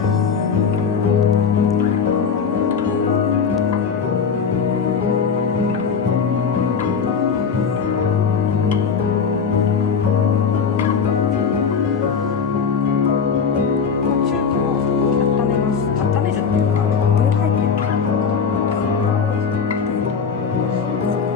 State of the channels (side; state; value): right; quieter; 6.1 dB